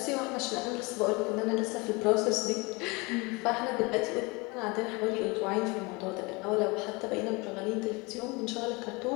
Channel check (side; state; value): right; quieter; 26.5 dB